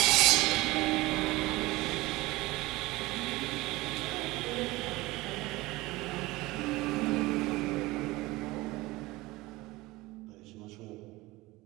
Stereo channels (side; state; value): left; quieter; 20.5 dB